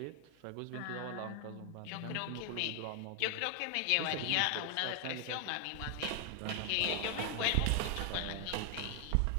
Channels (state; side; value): different; both; correlation 0.00